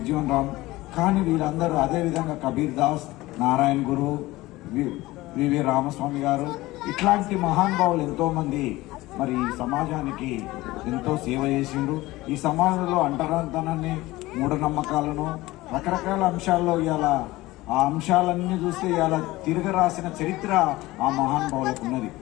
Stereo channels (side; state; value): right; quieter; 18.8 dB